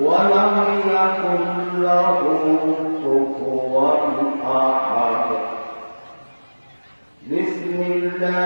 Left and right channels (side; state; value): both; inverted; correlation -1.00